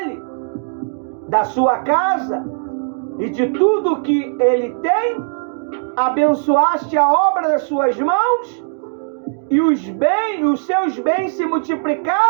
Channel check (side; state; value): left; silent; digital silence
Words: da sua casa e de tudo que ele tem? Abençoaste a obra das suas mãos? e os seus bens se